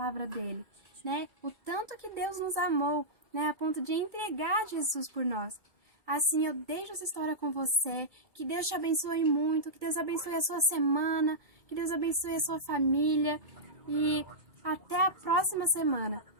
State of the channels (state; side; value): late; left; 2.2 ms